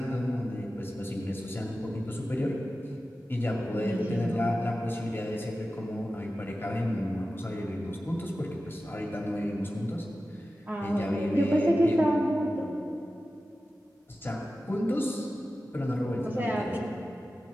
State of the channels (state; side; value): normal; both; correlation 0.94